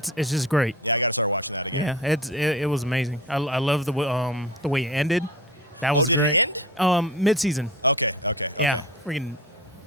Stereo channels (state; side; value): normal; both; correlation 0.35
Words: just great. Yeah, it was amazing. I love the way it ended. That was great. Mid-season. Yeah, freaking